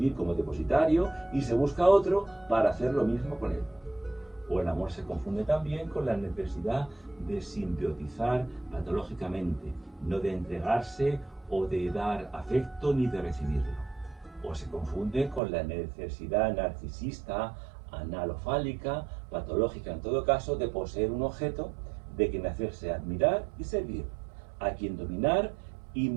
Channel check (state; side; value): drops out; left; at 15.4 s